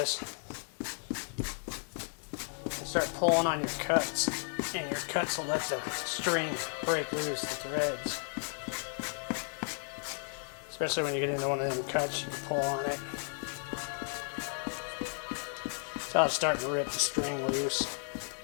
and start pulling on your cuts, and your cuts will let the string break loose, the threads. Especially when you get into one of them cuts, you can pull on it. So it's starting to rip the string loose.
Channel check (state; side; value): silent; right; 55 dB below the other